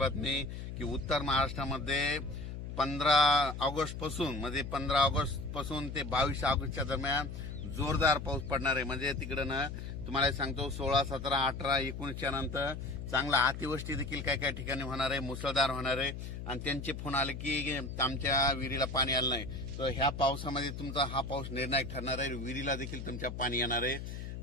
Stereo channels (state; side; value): noise; left; hum, 7 dB below the sound